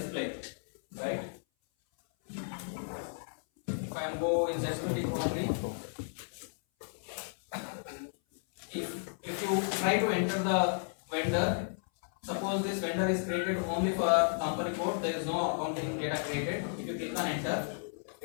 right? If I am go in security company, if you try to enter the vendor, suppose this vendor is created only for company code, there is no accounting data created. If you click on enter,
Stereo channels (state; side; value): silent; right; 55 dB below the other